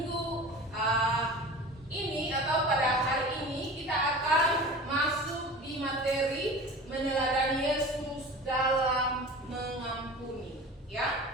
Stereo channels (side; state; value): both; normal; correlation 0.37